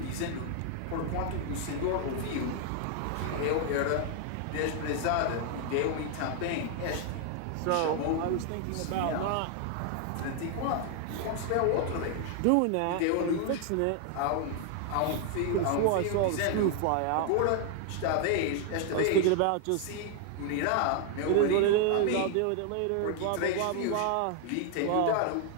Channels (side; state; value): both; different; correlation 0.00